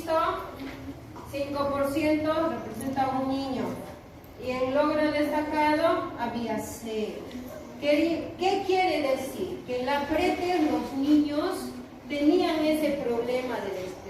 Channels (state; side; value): identical; both; correlation 1.00